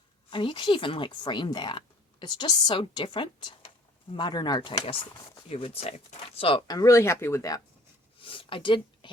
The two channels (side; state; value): both; normal; correlation 0.54